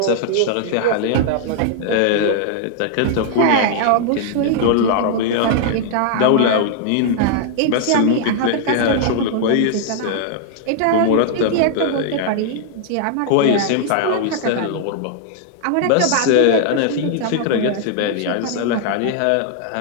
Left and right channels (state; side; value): different; both; correlation -0.01